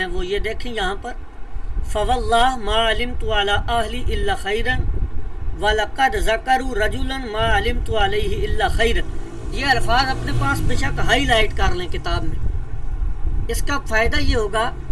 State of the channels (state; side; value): identical; both; correlation 1.00